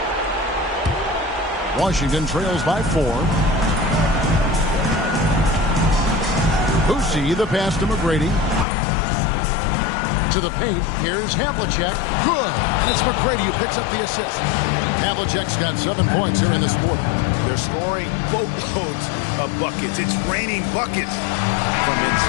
Washington trails by 4. Boosie, the pass to McGrady. To the paint. Here's Havlicek. Good. And it's McGrady who picks up the assist. Havlicek's got 7 points here in this quarter. They're scoring boatloads of buckets. It's raining buckets from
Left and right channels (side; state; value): right; drops out; at 8.7 s